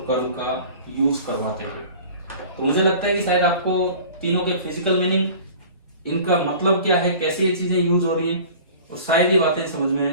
कर्ल का यूज करवाते हुए। तो मुझे लगता है कि शायद आपको तीनों के फिजिकल मीनिंग, इनका मतलब क्या है, कैसे ये चीजें यूज हो रही है, और शायद ये बातें समझ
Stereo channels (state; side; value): inverted; both; correlation -0.44